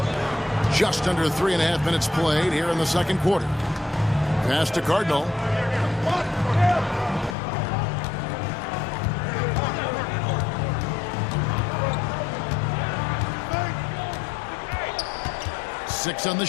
Just under 3.5 minutes played here in the second quarter. Pass to Cardinal. Six on the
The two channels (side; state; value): right; drops out; at 7.4 s